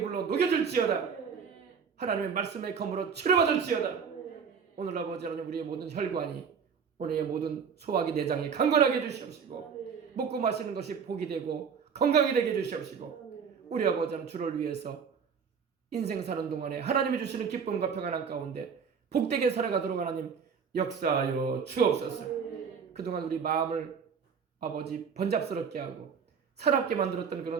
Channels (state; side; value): quieter; left; 6.4 dB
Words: 불로 녹여질지어다. 하나님의 말씀의 검으로 치료받을지어다. 오늘 아버지 하나님 우리의 모든 혈관이 오늘의 모든 소화기 내장이 강건하게 해주시옵시고 먹고 마시는 것이 복이 되고 건강이 되게 해주시옵시고 우리 아버지 하나님 주를 위해서 인생 사는 동안에 하나님이 주시는 기쁨과 평안한 가운데 복되게 살아가도록 하나님 역사하여 주옵소서. 그동안 우리 마음을 아버지 번잡스럽게 하고 사납게 만들었던